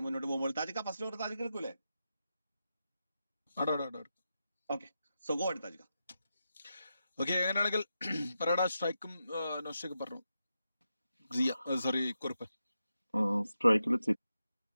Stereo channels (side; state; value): both; inverted; correlation -0.88